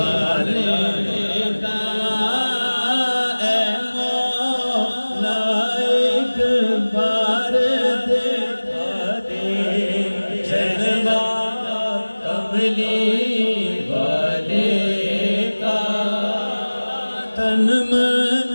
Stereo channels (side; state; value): both; inverted; correlation -1.00